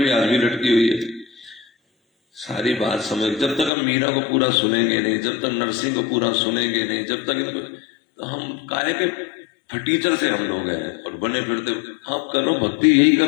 आज भी लटकी हुई है। सारी बात समझ, जब तक हम मीरा को पूरा सुनेंगे नहीं, जब तक नरसिंह को पूरा सुनेंगे नहीं, जब तक इनको, तो हम काहे के फटीचर से हम लोग हैं और बने फिरते। आप करो भक्ति, यही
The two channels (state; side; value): drops out; right; at 3.7 s